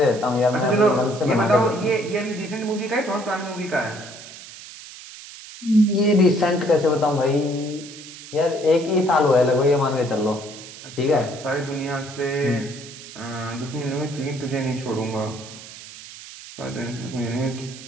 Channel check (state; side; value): noise; right; hiss, 15 dB below the sound